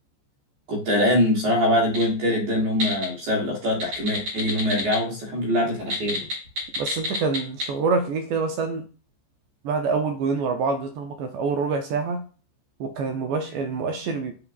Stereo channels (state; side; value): late; left; 14 ms